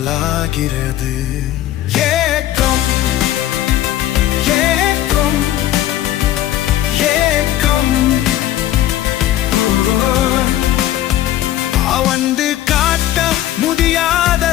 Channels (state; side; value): quieter; right; 13.1 dB